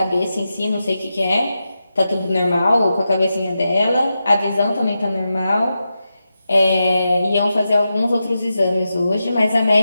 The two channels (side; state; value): both; inverted; correlation -0.89